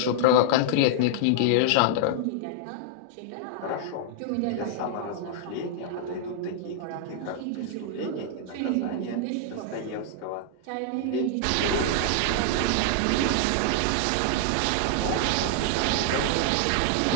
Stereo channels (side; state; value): both; different; correlation -0.01